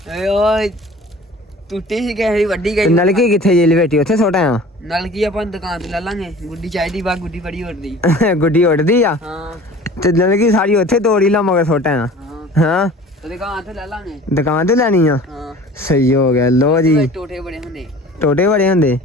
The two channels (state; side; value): normal; both; correlation 0.44